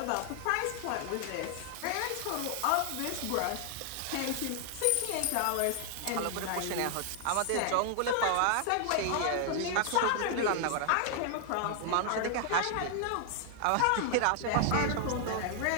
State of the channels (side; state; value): both; different; correlation 0.00